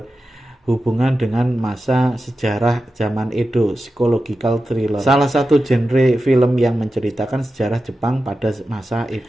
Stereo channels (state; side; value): normal; both; correlation 0.92